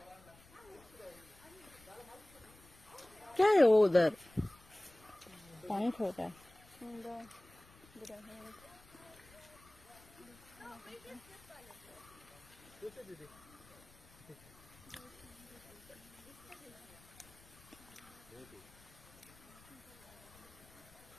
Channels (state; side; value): noise; left; rumble, 24 dB below the sound